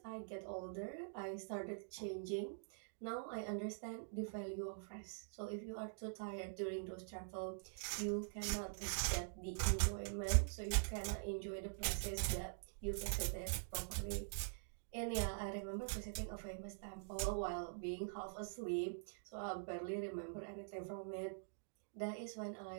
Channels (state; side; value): silent; left; digital silence